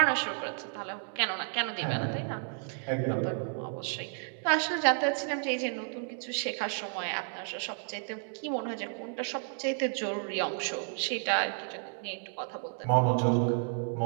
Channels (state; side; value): silent; left; 57 dB below the other